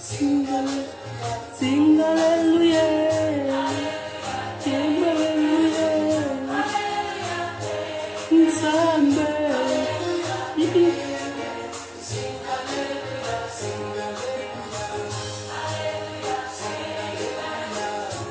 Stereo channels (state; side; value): identical; both; correlation 1.00